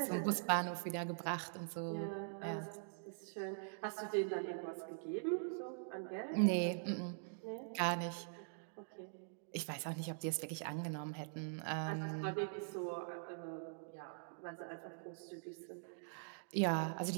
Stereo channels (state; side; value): silent; left; digital silence